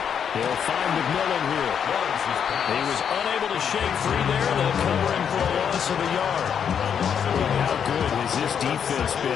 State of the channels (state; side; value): quieter; right; 7.8 dB